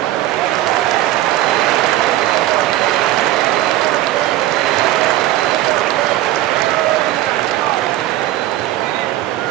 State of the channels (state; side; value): quieter; left; 14.7 dB